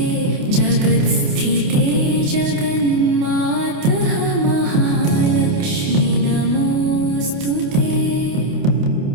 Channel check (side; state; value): left; late; 28 ms